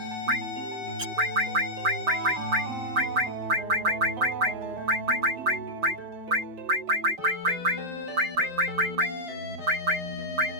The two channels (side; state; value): left; late; 5.7 ms